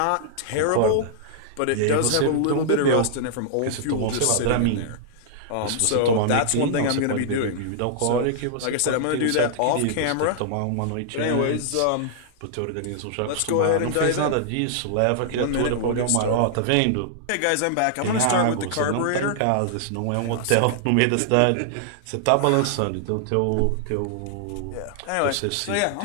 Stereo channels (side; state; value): both; different; correlation -0.01